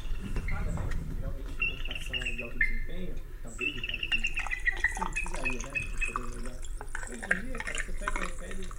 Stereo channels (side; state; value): both; identical; correlation 1.00